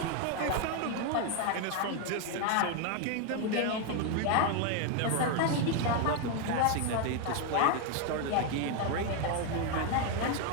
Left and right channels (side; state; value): both; different; correlation 0.01